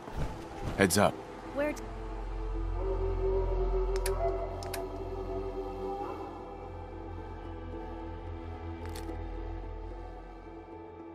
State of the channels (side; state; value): both; identical; correlation 1.00